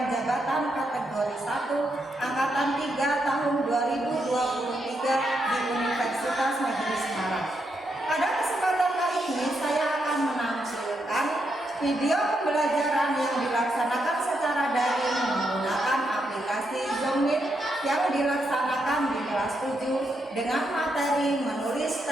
jabatan kategori 1 angkatan 3 tahun 2023 di Universitas Negeri Semarang. Pada kesempatan kali ini saya akan menampilkan video pembelajaran yang dilaksanakan secara daring menggunakan aplikasi Zoom Meet yang dilaksanakan di kelas 7 dengan materi menulis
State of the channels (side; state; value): both; normal; correlation 0.81